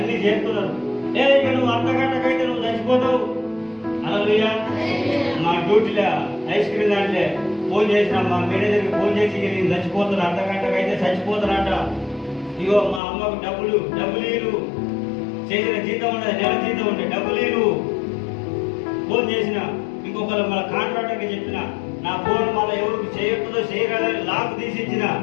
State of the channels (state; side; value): drops out; right; at 13.0 s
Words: చేస్తున్నారు. ఇక నువ్వు అర్ధగంటకైతే నువ్వు చచ్చిపోతావు. హల్లెలూయా. మా డ్యూటీలో ఐస్ క్రీమ్ దాంట్లో ఫోన్ చేసిన మా మేనేజర్కి ఫోన్ చేసి నేను చచ్చిపోతున్నా, అర్ధగంటకైతే చచ్చిపోతున్నట. ఇగో మా అమ్మకు డబ్బులు చేసిన జీతం ఉండదు, నెల జీతం ఉండే డబ్బులు ఫోన్ చేసిన. ఇంకొకరు మన కాంట్రాక్టర్కి చెప్పిన, నా ఫోన్ మళ్ళీ ఎవరికి చేయొద్దో చేయగలని లాక్ తీసి ఇచ్చిన.